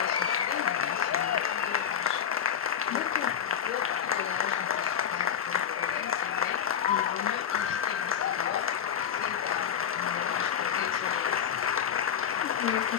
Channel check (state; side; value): quieter; right; 8.5 dB